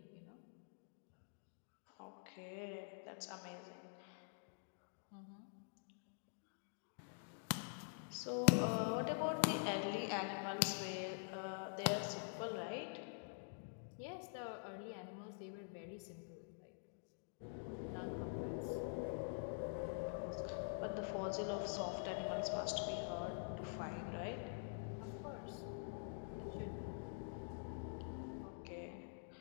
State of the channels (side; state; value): right; silent; digital silence